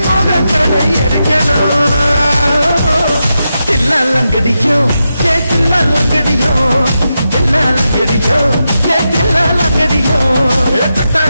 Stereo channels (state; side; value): inverted; both; correlation -0.88